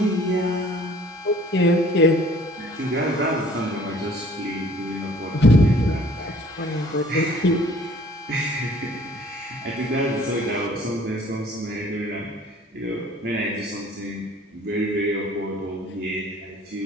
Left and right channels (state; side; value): normal; both; correlation 0.53